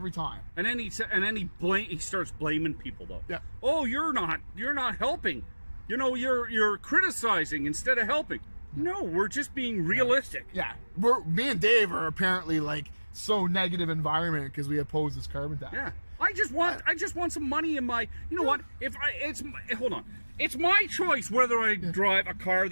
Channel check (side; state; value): both; inverted; correlation -1.00